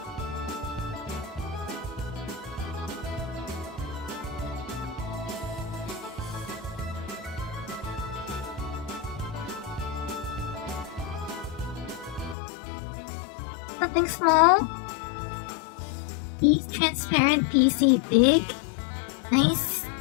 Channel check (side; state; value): right; drops out; at 12.4 s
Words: Something small? Transparent PC big?